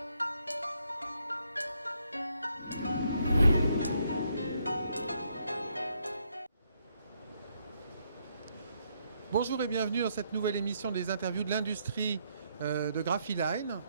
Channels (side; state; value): both; inverted; correlation -0.74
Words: Bonjour et bienvenue dans cette nouvelle émission des interviews de l'industrie de Graphiline,